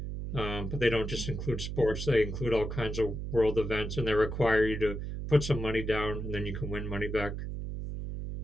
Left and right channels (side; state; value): right; noise; hum, 5 dB below the sound